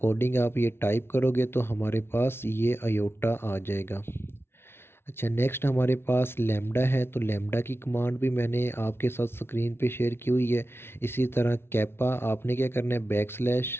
आप ये टाइप करोगे तो हमारे पास ये अयोटा आ जाएगा। अच्छा, नेक्स्ट हमारे पास लैम्डा है। तो लैम्डा की कमांड भी मैंने आपके साथ स्क्रीन पे शेयर की हुई है। इसी तरह कैपा आपने क्या करना है, बैक स्लैश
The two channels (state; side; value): late; right; 0.12 ms